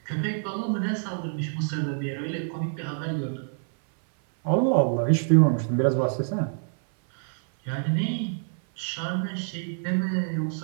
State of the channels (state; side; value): silent; left; 58 dB below the other